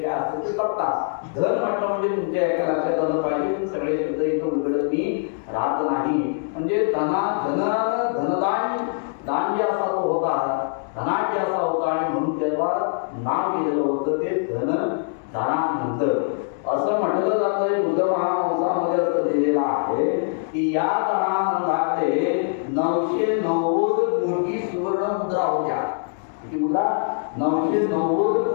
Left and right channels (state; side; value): silent; right; digital silence